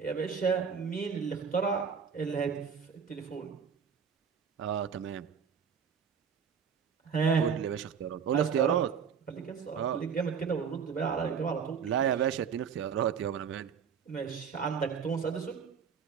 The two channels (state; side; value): quieter; left; 6.8 dB